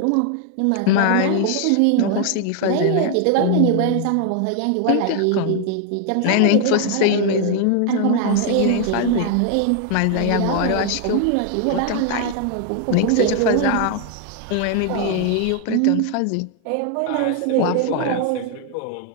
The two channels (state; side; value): different; both; correlation 0.00